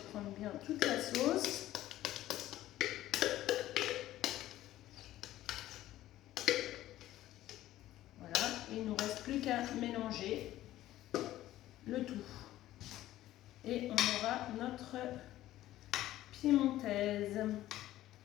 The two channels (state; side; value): quieter; right; 14.5 dB